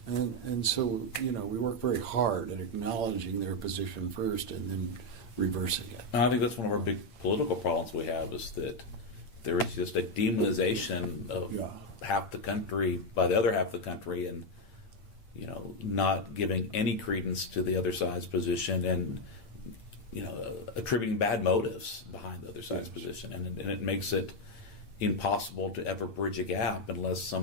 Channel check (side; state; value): right; late; 8.7 ms